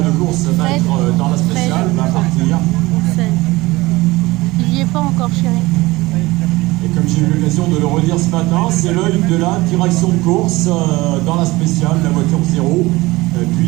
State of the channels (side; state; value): left; quieter; 20.4 dB